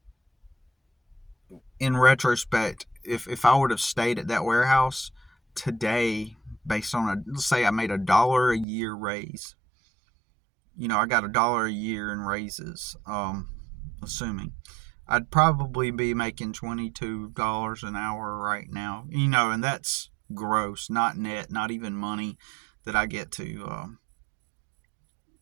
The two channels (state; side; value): drops out; left; at 8.7 s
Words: in retrospect, if I would have stayed at that warehouse today, based on let's say I made $1 a year raise, I got $1 a year in raises, assuming I'd probably be making $22 an hour right now, and that's gross, not net, not even money that I get to